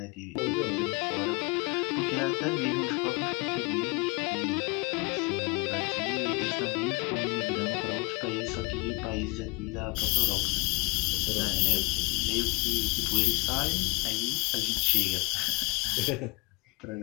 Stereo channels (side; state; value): right; quieter; 28.8 dB